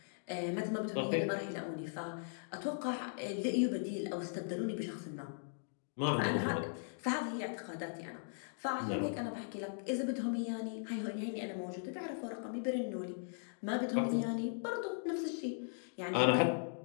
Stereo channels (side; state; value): right; silent; digital silence